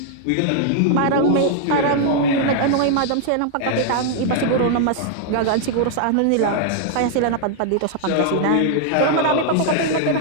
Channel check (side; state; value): both; different; correlation -0.01